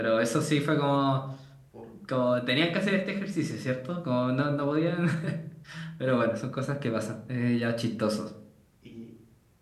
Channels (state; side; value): identical; both; correlation 1.00